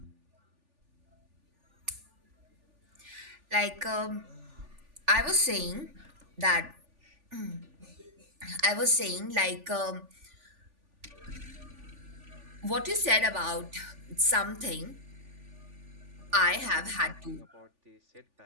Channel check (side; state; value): left; late; 3.4 ms